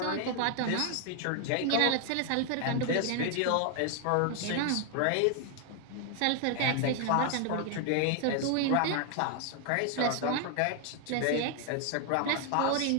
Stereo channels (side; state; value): both; different; correlation 0.00